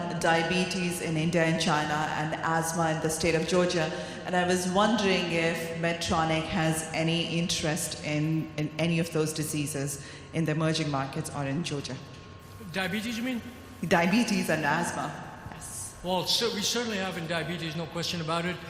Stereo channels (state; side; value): identical; both; correlation 1.00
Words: diabetes in India and China and asthma in the state of Georgia, and I was wondering if Medtronic has any interest in any of those diseases in the emerging markets or in Georgia. Diabetes, you mean? Diabetes and asthma, yes. Well, so we certainly have in diabetes, no question about it.